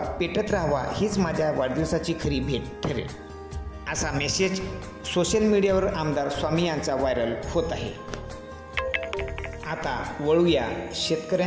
पेटत राहावा, हीच माझ्या वाढदिवसाची खरी भेट ठरेल, असा मेसेज सोशल मीडियावर आमदार स्वामी यांचा व्हायरल होत आहे. आता वळूया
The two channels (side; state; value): both; identical; correlation 1.00